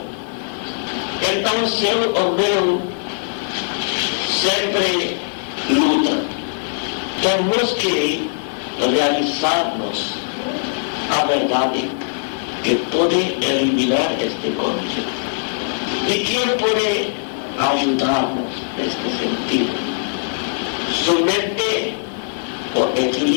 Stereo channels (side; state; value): right; silent; digital silence